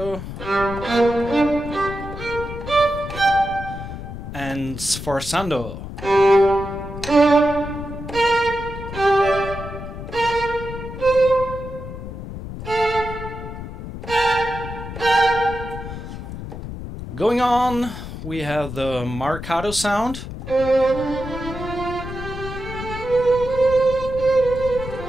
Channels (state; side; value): noise; left; rumble, 9 dB below the sound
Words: and sforzando. Going on, we have the marcato sound.